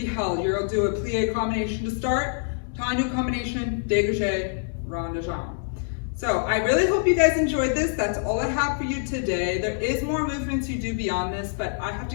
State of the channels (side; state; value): right; silent; digital silence